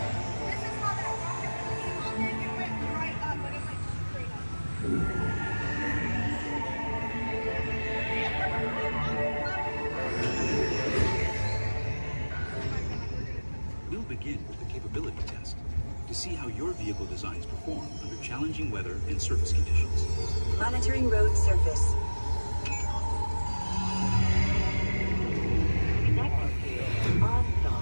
We'll begin with the capability test to see how your vehicle designs perform under challenging weather and surface conditions. Monitoring road surface.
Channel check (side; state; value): both; inverted; correlation -1.00